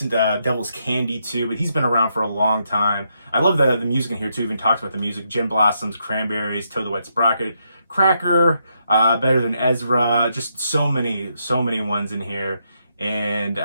Devil's Candy too, but he's been around for a long time. I love the music in here too. Even talks about the music. Gin Blossoms, Cranberries, Toad the Wet Sprocket, Cracker, Better Than Ezra. Just so many ones in here. And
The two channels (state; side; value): inverted; both; correlation -0.79